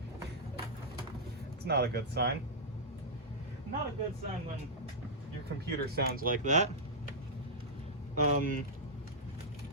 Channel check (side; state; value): both; normal; correlation -0.10